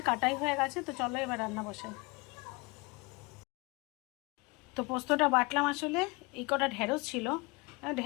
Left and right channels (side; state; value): right; quieter; 27.0 dB